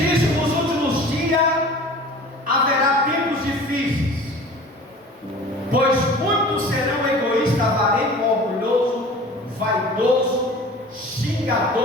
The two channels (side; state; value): both; normal; correlation 0.42